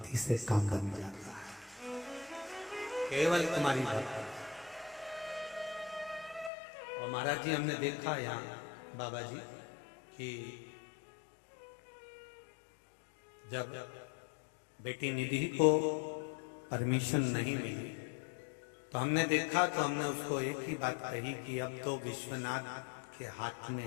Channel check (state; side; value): drops out; right; at 6.5 s